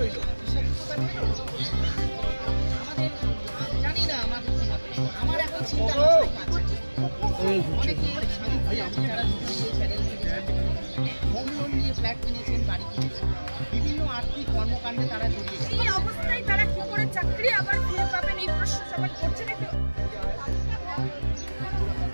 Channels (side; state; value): both; inverted; correlation -1.00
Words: বিভিন্ন আর্থিক কর্মকাণ্ডে তারা জড়িয়ে গেছে। এই অবস্থায় তারা কি করে চাকরি আবার ফিরে পাবেন এই প্রশ্ন সবাই করছে নাকি?